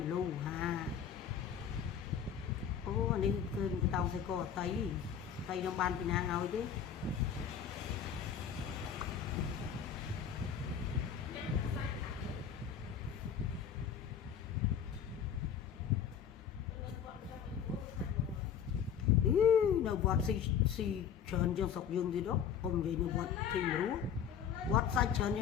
លូហាអូនេះគឺបតោងសេកអតីខ្ញុំបានពីណាឲ្យទេ នៅវត្តស៊ីច្រើនជាងស្រុកយើងទៀតទៅអ៊ំនិយាយនៅវត្តទីមរូវត្តសាច់ច្រើនជ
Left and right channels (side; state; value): right; quieter; 8.1 dB